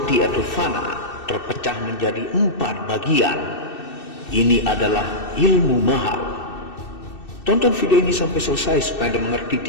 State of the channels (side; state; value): right; late; 2.6 ms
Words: atau fana terpecah menjadi 4 bagian. Ini adalah ilmu mahal. Tonton video ini sampai selesai supaya Anda mengerti,